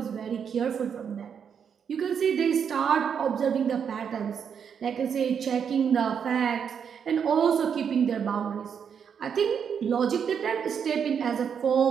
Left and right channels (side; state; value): left; quieter; 7.3 dB